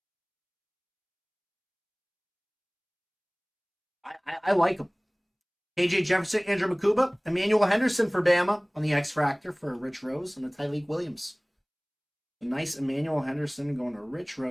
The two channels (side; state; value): both; identical; correlation 1.00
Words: I like him. KJ Jefferson, Andrew Makuba, Emmanuel Henderson for Bama on the X Factor for Rich Rose, and a Tyleek Williams A nice Emmanuel Henderson going to Rich